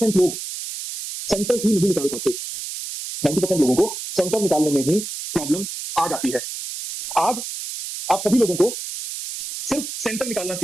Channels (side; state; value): right; noise; hiss, 7 dB below the sound